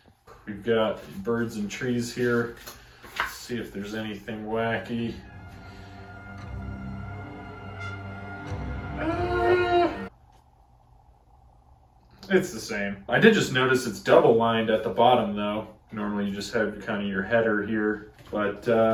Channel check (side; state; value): both; identical; correlation 1.00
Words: We've got birds and trees here. Let's see if there's anything wacky. It's the same. I did just notice it's double lined at the bottom though. Normally you just have kind of your header here. But